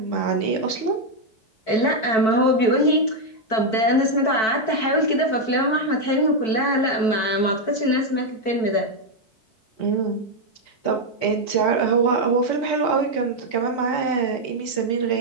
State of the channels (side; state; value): right; late; 4.2 ms